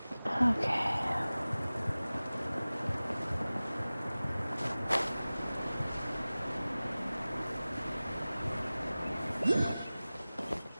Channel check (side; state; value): both; inverted; correlation -0.98